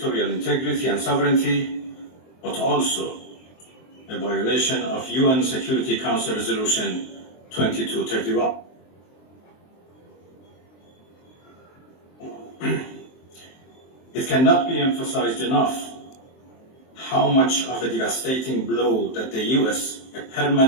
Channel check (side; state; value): right; late; 23 ms